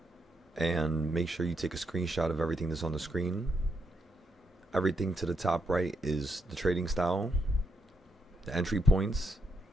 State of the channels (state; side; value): normal; both; correlation 0.79